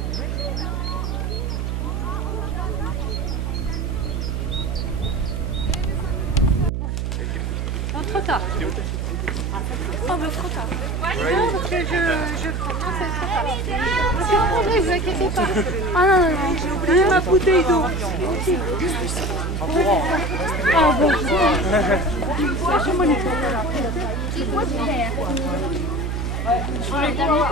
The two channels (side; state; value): right; noise; hum, 1 dB below the sound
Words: Trop tard. Oh, mais trop tard. Non, parce que je prends. Non, c'est trop tard. Ne vous inquiétez pas. Ah non, non, non. J'ai oublié ma bouteille d'eau. Ah bon. Je m'en